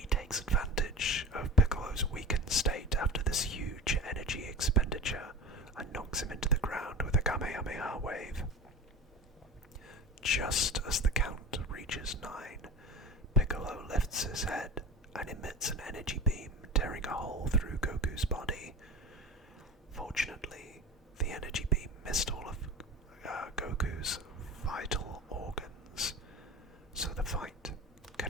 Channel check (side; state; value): both; normal; correlation 0.33